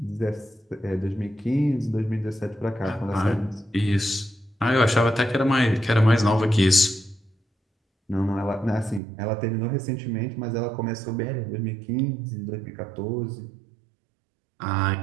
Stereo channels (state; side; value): drops out; left; at 9.0 s